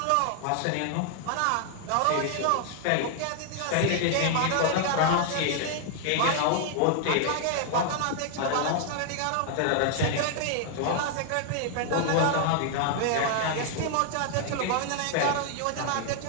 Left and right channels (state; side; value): different; both; correlation 0.00